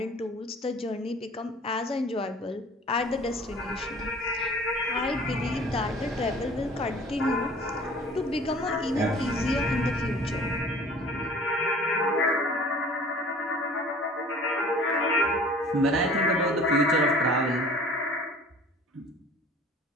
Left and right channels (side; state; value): both; normal; correlation 0.47